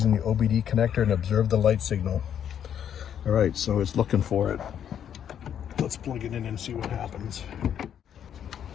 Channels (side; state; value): right; quieter; 9.2 dB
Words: the OBD connector and observe the light signal. All right, so it's looking for it. Let's plug it in and see what happens.